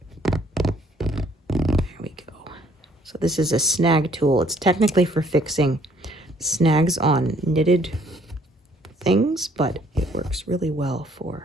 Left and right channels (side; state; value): both; normal; correlation 0.63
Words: There we go. So this is a snag tool. It's technically for fixing snags on knitted things, but it works really well